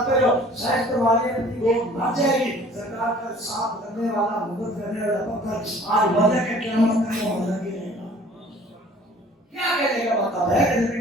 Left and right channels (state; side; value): normal; both; correlation 0.51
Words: جو سائنس کے والے اپنی وہ مر جائے گی سرکار کا ساتھ کرنے والا مدد کرنے والا پتھر آج وجہ کے قیامت کا وہ لگی رہے گا کیا کہنے کا مطلب ہے کہ